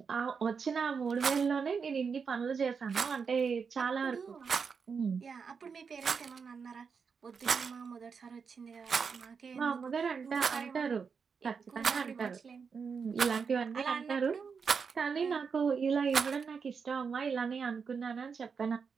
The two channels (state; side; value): quieter; left; 5.8 dB